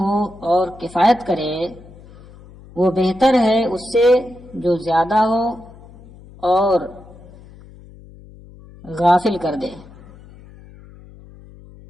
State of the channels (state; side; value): noise; left; hum, 21 dB below the sound